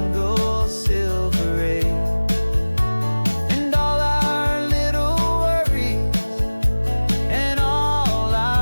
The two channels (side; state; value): both; inverted; correlation -1.00